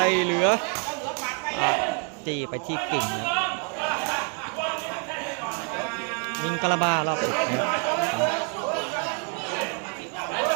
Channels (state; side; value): quieter; left; 37.3 dB